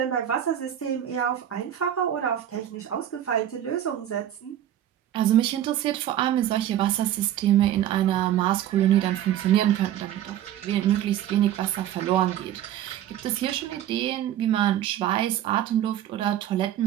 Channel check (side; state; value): left; quieter; 11.4 dB